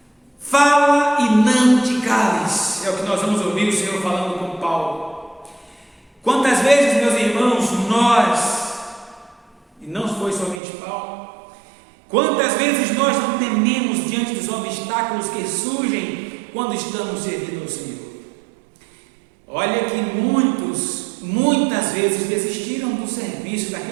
Fala e não te cales, é o que nós vamos ouvir o Senhor falando com Paulo. Quantas vezes, meus irmãos, nós, e não foi somente Paulo, quantas vezes nós não tememos diante dos obstáculos que surgem quando estamos servindo ao Senhor? Olha que muitas vezes desistiram do serviço,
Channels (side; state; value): left; drops out; at 10.6 s